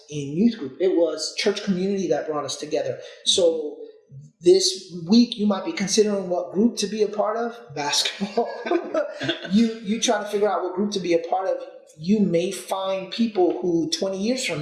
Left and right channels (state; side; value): identical; both; correlation 1.00